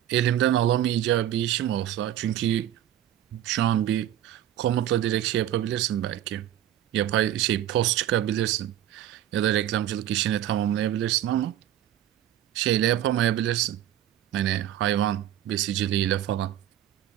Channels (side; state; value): left; quieter; 11.9 dB